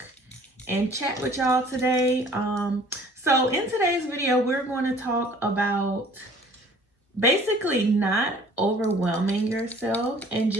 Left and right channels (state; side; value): normal; both; correlation 0.52